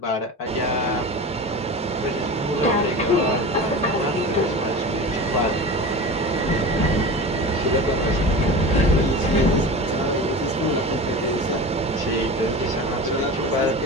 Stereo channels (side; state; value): both; normal; correlation 0.31